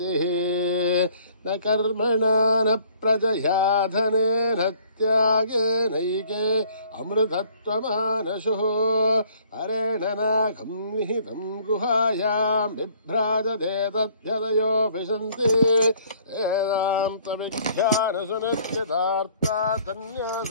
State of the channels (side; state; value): both; inverted; correlation -0.58